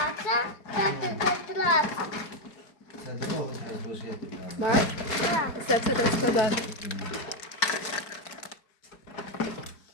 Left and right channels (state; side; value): late; right; 4.7 ms